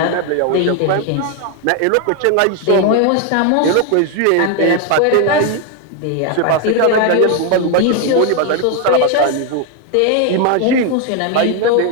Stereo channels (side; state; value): both; different; correlation 0.01